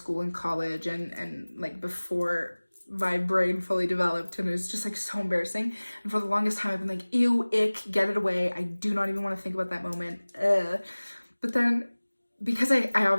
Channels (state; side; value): inverted; both; correlation -1.00